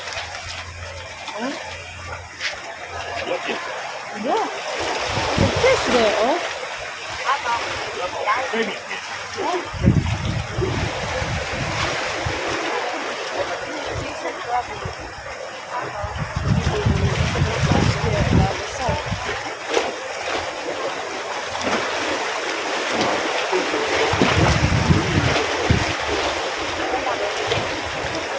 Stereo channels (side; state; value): both; identical; correlation 1.00